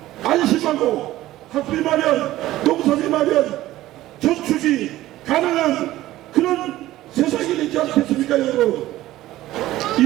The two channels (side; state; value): left; quieter; 15.5 dB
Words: 안심하고 학비 마련, 농사비 마련, 저축이 가능한 그런 세상이 되지 않겠습니까, 여러분?